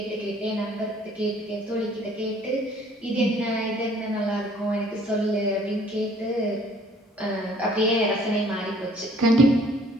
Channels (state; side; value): normal; both; correlation 0.58